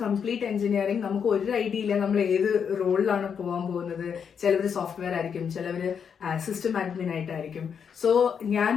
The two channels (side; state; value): right; quieter; 7.1 dB